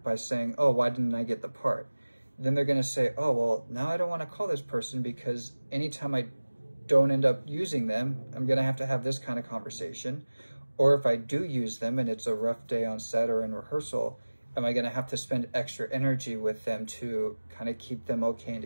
by saying, oh, why didn't I get the part? Then they're going to say, oh, well, now I don't want to call this person because anytime I don't end up using them, I'm going to have this kind of conversation. Or if I do use them and it's a rough day on set or in rehearsal, am I going to have to spend extra energy with them to kind of keep them okay and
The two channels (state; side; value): inverted; both; correlation -1.00